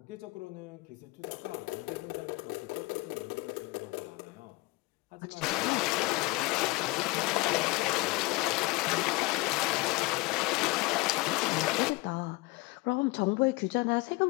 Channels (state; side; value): quieter; right; 23.4 dB